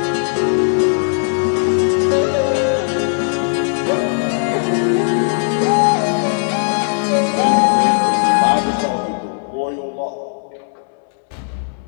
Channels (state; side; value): silent; right; 68 dB below the other